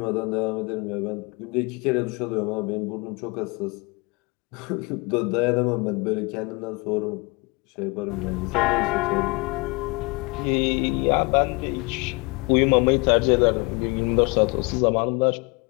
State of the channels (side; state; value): right; quieter; 28.0 dB